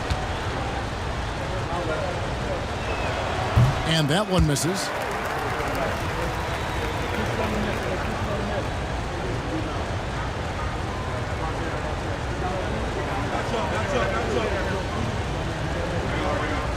And that one misses.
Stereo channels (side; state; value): both; identical; correlation 1.00